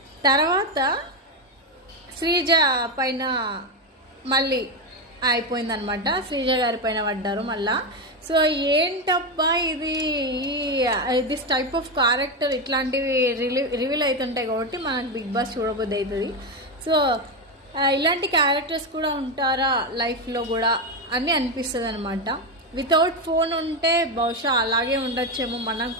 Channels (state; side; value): normal; both; correlation 0.11